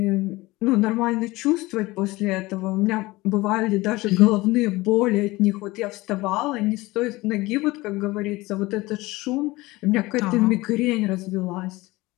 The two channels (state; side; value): quieter; right; 20.5 dB